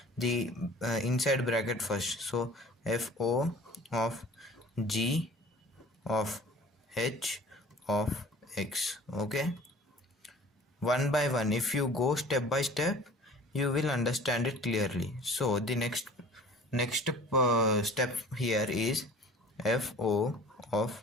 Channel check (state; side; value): normal; both; correlation 0.46